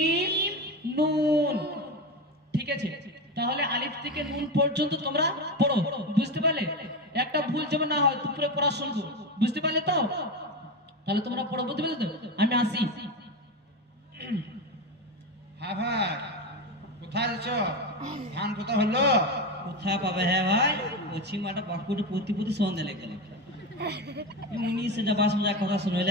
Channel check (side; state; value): both; normal; correlation 0.18